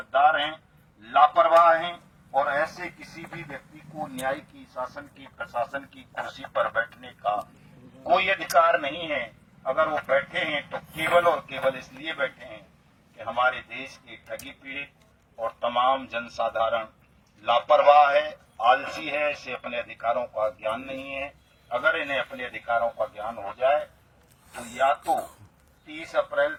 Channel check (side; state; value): both; identical; correlation 1.00